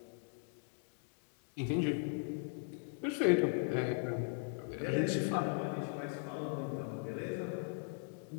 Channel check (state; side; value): silent; right; 52 dB below the other